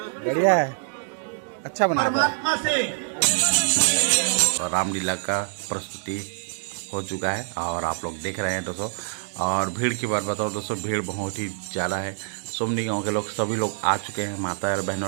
बढ़िया है, अच्छा बना है। परमात्मा से और रामलीला का प्रस्तुति हो चुका है और आप लोग देख रहे हैं दोस्तों। और भीड़ की बात बताओ दोस्तों, भीड़ बहुत ही ज़्यादा है। सुमनी गांव के लोग सभी लोग आ चुके हैं, माता और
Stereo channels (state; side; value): silent; left; digital silence